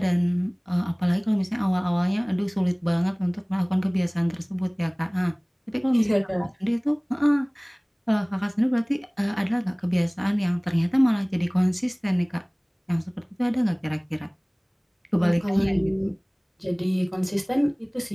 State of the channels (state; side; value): identical; both; correlation 1.00